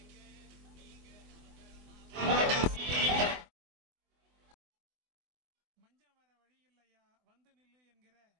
மஞ்சம் வர வழி இல்லையா வந்து நில்லு என்கிற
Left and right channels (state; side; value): late; left; 24 ms